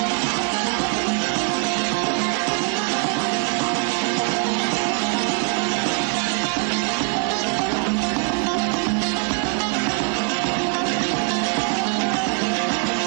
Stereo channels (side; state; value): left; quieter; 35.5 dB